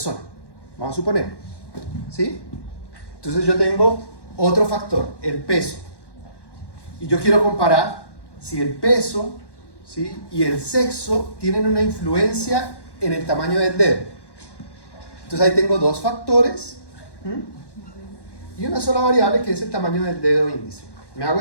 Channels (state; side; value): late; right; 1.1 ms